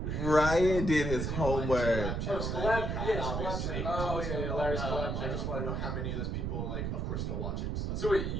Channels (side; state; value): right; noise; rumble, 1 dB below the sound